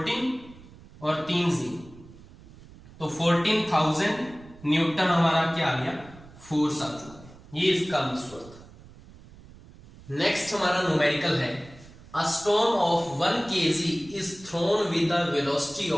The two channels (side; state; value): right; noise; rumble, 21 dB below the sound